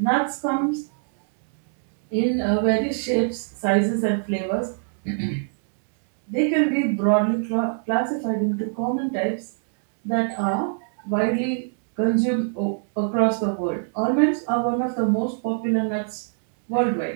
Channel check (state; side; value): silent; left; digital silence